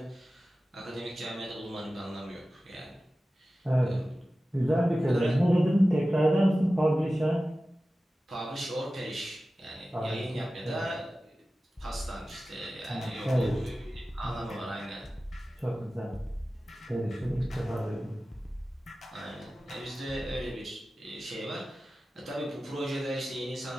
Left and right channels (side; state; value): both; normal; correlation 0.95